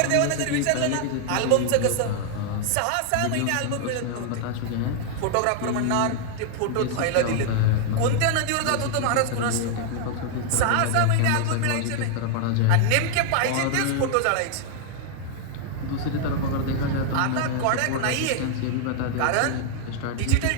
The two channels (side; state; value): both; different; correlation 0.00